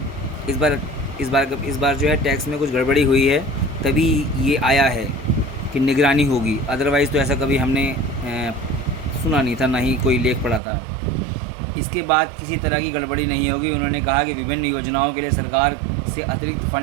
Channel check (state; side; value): drops out; left; at 10.6 s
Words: इस बार जो है टैक्स में कुछ गड़बड़ी हुई है, तभी ये आया है कि निगरानी होगी। अदरवाइज़ तो ऐसा कभी हमने सुना नहीं था, ना ही कोई लेख पढ़ा था। इसके बाद किसी तरह की गड़बड़ी नहीं होगी। उन्होंने कहा कि विभिन्न योजनाओं के लिए सरकार से अतिरिक्त